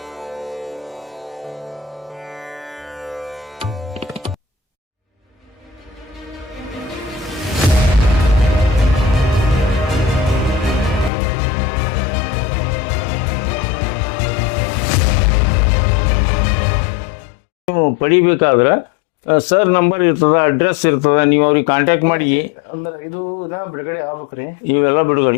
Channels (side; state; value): right; drops out; at 11.1 s